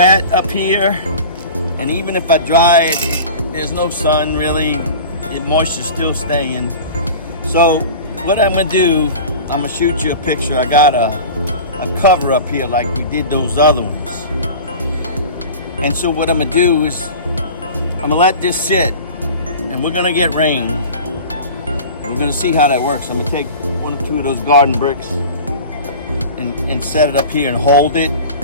up here, and even if I dry it, there's no sun really, the moisture's still staying. So what I'm gonna do, I'm gonna shoot you a picture. I got a cover up here like we did those other ones. And so what I'm gonna do is I'm gonna let this sit, and we're gonna get rain. We're gonna see how that works. I'm gonna take one or two of those garden bricks and set it up here and hold it.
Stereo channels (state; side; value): inverted; both; correlation -0.37